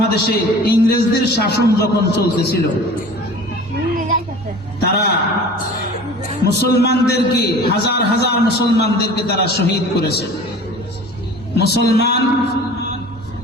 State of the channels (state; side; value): normal; both; correlation 0.42